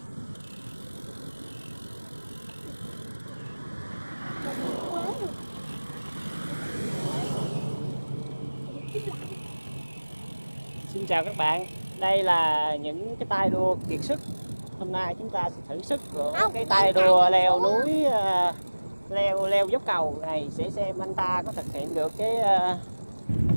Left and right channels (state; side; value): inverted; both; correlation -1.00